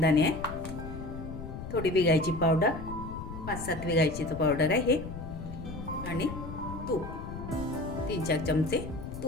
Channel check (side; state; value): left; noise; rumble, 9 dB below the sound